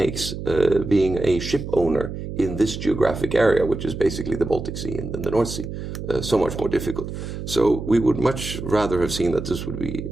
being a ship owner in this geographic area, which is basically the Baltic Sea and the North Sea, so much more difficult. So we would much rather have seen that this would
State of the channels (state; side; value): noise; right; hum, 7 dB below the sound